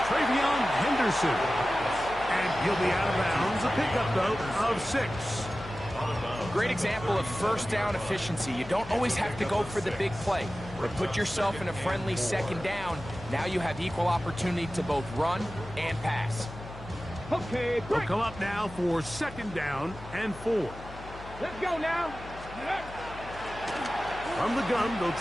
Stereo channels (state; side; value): noise; left; hum, 15 dB below the sound